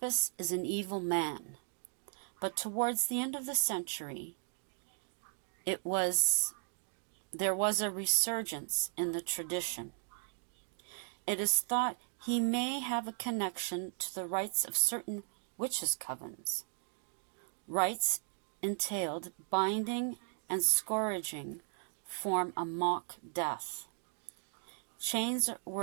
is an evil man. But towards the end of the century, there was a resurgence in the tradition. It is thought he may have a connection to the rites of certain witches' covens. Rites entailed binding and scourging form a mock death. Chains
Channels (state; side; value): silent; left; 53 dB below the other